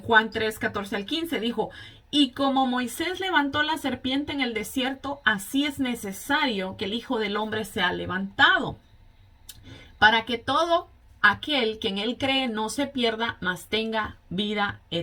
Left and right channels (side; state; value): both; identical; correlation 1.00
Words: 3, 14 al 15, dijo, y como Moisés levantó la serpiente en el desierto, así es necesario que el Hijo del Hombre sea levantado, para que todo aquel que en él cree no se pierda, mas tenga vida